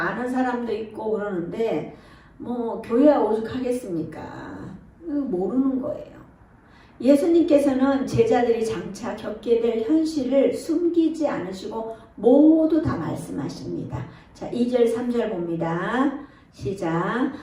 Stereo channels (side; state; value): both; identical; correlation 1.00